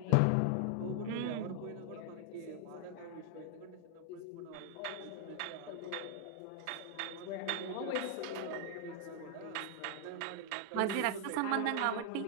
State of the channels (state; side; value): different; both; correlation 0.00